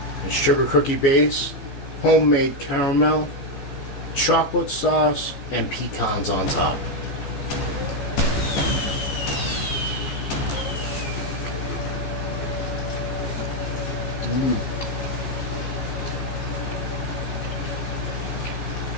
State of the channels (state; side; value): late; right; 15 ms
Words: It's sugar cookie base, homemade caramel, chocolate sauce, and pecans on top.